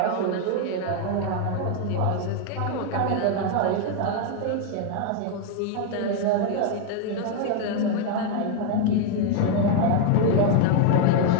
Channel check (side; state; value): both; different; correlation 0.01